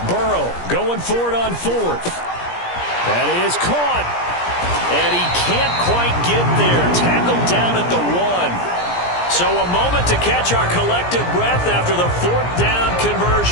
Burrow going for it on 4th. That is caught. And he can't quite get there. Tackled down at the 1. So a moment to catch our collective breath after the 4th down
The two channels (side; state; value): right; late; 17 ms